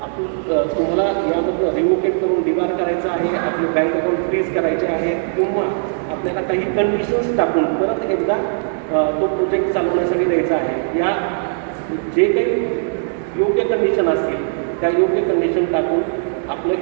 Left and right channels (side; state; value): left; silent; digital silence